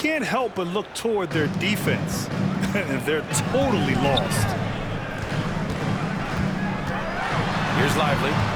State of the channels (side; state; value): both; identical; correlation 1.00